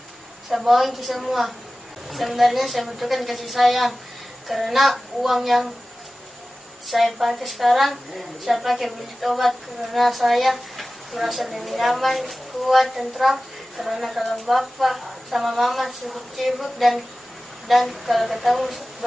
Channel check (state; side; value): normal; both; correlation 0.96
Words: saya bohongin ke semua. Sebenarnya saya butuhkan kasih sayang karena uang yang saya pakai sekarang saya pakai beli obat karena saya merasa lebih nyaman, kuat, tentram karena kalau bapak sama mama sibuk-sibuk dan kalau ketemu